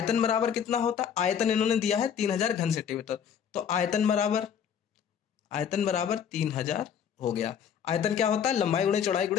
बराबर कितना होता है, आयतन इन्होंने दिया है 3000 घन सेंटीमीटर, तो आयतन बराबर 3000 हो गया। आयतन क्या होता है, लंबाई गुणे चौड़ाई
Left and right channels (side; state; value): right; quieter; 8.2 dB